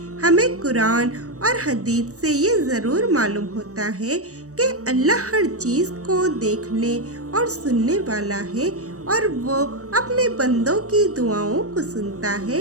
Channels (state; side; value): late; left; 0.65 ms